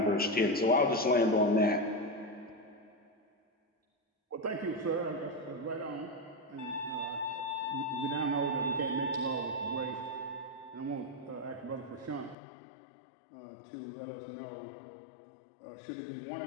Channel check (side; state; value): right; drops out; at 12.4 s